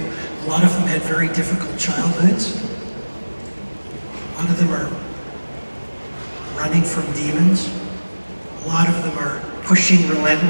a lot of them had very difficult childhoods. A lot of them are running from demons. A lot of them are pushing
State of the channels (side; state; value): both; inverted; correlation -1.00